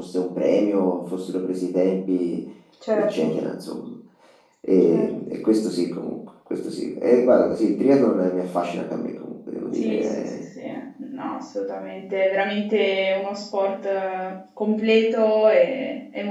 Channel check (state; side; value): identical; both; correlation 1.00